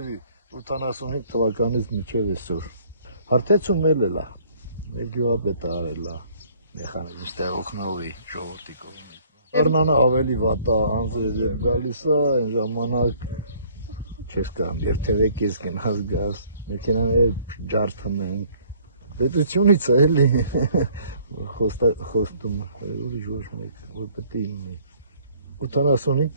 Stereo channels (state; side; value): inverted; both; correlation -0.59